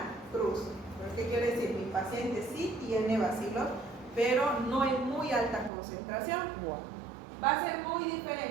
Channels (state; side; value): drops out; left; at 5.7 s